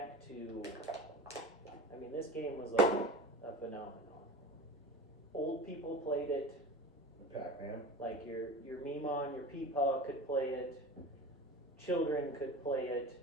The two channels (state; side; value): normal; both; correlation 0.33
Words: to, I mean, this game was like a phenomenon. Old people played it. Pac-Man. Like your Meemon, your Peepaw could play it. Children could play